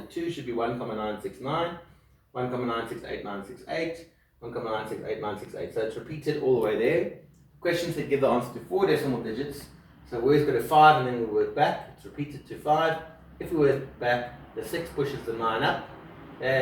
2 should be 1,969, 1,968,968, 1,968,968. So it's repeated all the way there. Questions that give the answer to 4 decimal digits. So we always go to 5 and then we work back. It's repeated to 5. If we work back, the 6 pushes the 9 up,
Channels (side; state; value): both; identical; correlation 1.00